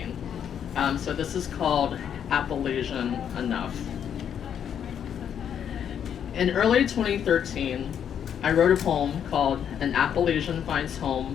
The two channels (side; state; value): right; quieter; 8.7 dB